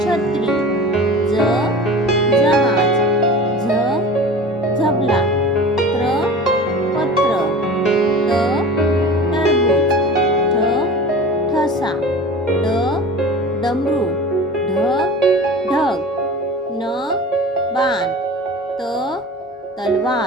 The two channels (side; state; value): both; normal; correlation 0.36